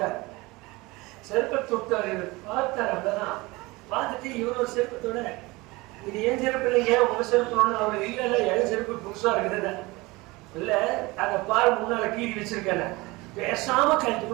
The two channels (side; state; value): left; quieter; 22.7 dB